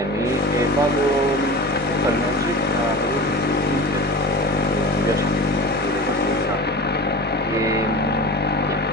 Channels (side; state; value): both; normal; correlation 0.33